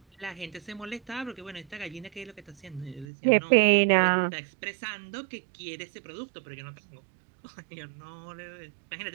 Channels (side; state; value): left; drops out; at 3.1 s